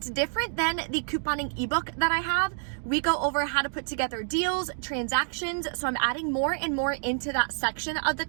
different than the couponing ebook that I have. We go over how to put together deals, transactions, so I'm adding more and more into that section of the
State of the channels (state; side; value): silent; left; digital silence